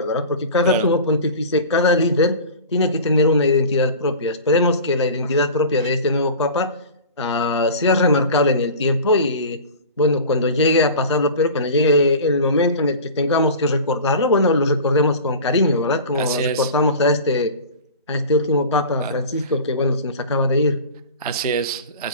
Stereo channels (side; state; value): both; inverted; correlation -0.36